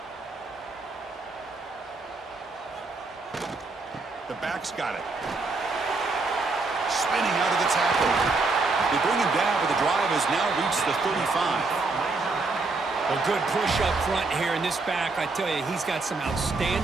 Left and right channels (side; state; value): left; quieter; 3.7 dB